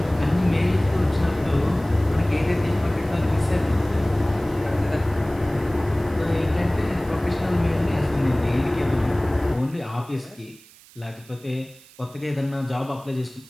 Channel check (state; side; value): noise; right; hiss, 24 dB below the sound